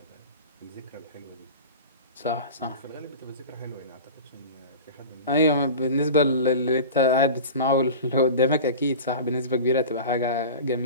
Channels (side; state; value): both; inverted; correlation -0.34